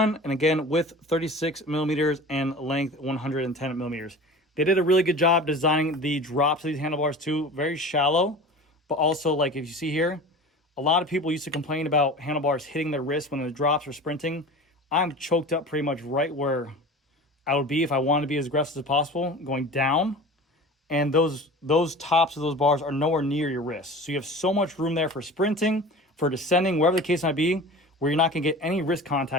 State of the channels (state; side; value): normal; both; correlation 0.37